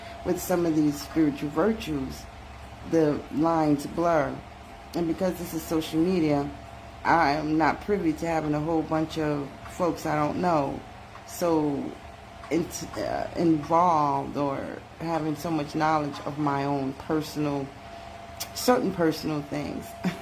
with some of these spiritual virtues, the lines blur. And because this is social media, I am not privy to having a whole bunch of folks I don't know so involved, or having so much knowledge of my own certain personal things.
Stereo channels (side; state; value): both; identical; correlation 1.00